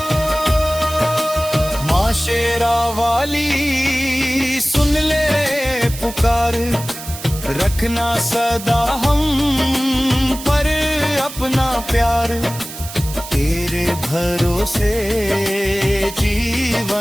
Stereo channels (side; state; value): right; noise; hiss, 12 dB below the sound